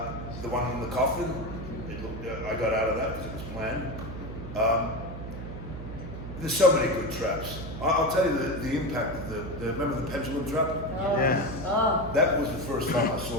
The one in the coffin, I got out of that because it was planned. There's so many good traps. I'll tell you the impact of remember the pendulum trap? Oh. Yeah. Oh. That was the first time I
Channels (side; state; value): right; noise; hum, 9 dB below the sound